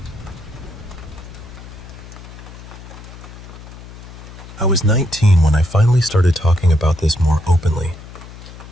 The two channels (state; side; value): noise; left; hum, 16 dB below the sound